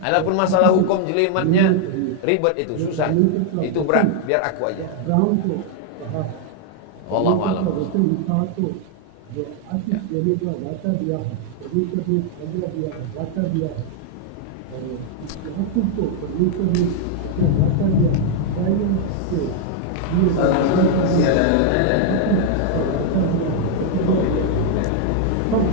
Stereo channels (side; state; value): both; different; correlation 0.00